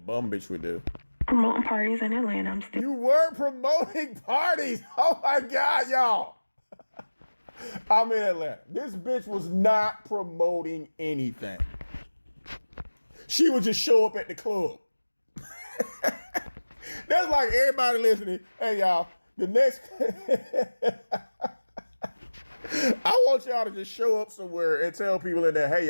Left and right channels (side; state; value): both; inverted; correlation -1.00